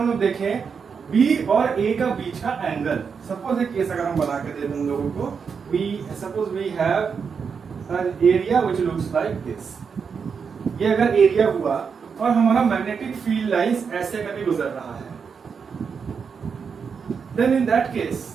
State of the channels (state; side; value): quieter; left; 6.1 dB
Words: लोग देखें B और A का बीच का एंगल, सपोज एक केस अगर हम बना के दे दें लोगों को, suppose we have an area which looks like this. ये अगर एरिया हुआ और हमारा मैग्नेटिक फील्ड लाइंस ऐसे करके गुजर रहा है, देन इन दैट केस